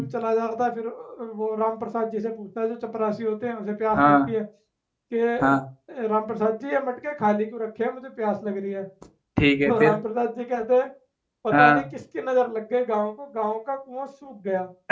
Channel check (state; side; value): identical; both; correlation 1.00